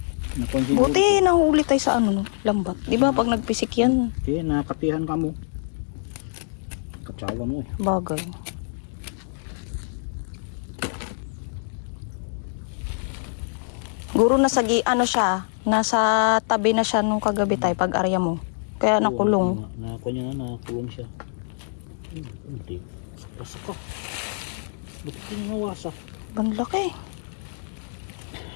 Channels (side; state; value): right; silent; digital silence